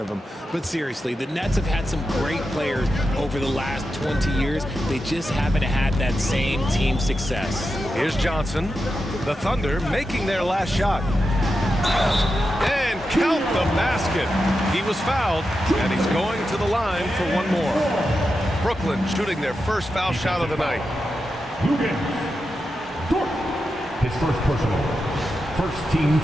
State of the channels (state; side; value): normal; both; correlation 0.89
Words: him. But seriously, the Nets have had some great players over the last 20 years. They just haven't had that same team success. Here's Johnson. The Thunder making their last shot. And count the basket. He was fouled, and he's going to the line for one more. Brooklyn shooting their first foul shot of the night. His first personal. First team